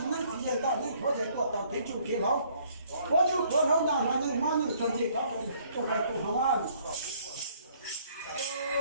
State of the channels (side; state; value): both; inverted; correlation -0.62